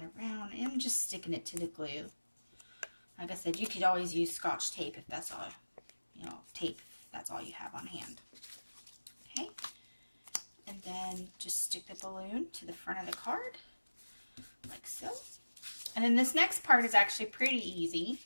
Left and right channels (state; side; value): inverted; both; correlation -1.00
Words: around and just sticking it to the glue. Like I said, you could always use Scotch tape if that's all, you know, tape if that's all you have on hand. Okay, and then just stick the balloon to the front of the card, like so. And then this next part is actually pretty easy.